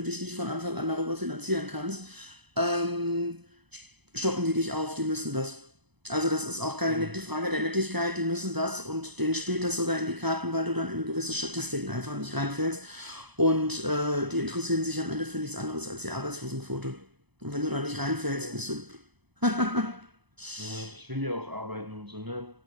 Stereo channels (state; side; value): late; left; 0.99 ms